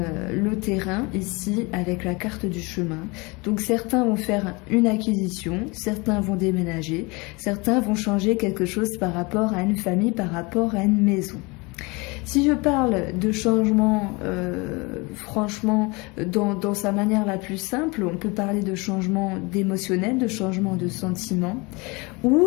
terrain ici avec la carte du chemin. Donc certains vont faire une acquisition, certains vont déménager, certains vont changer quelque chose par rapport à une famille, par rapport à une maison. Si je parle de changement, franchement, dans sa manière la plus simple, on peut parler de changement d'émotionnel, de changement de sentiment, où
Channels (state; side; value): quieter; right; 26.5 dB